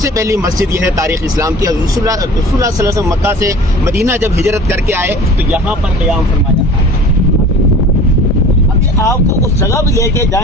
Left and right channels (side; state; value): both; normal; correlation 0.43